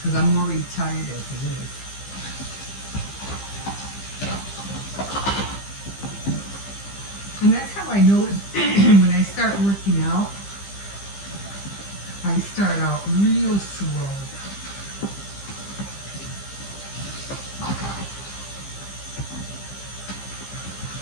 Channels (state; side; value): late; right; 15 ms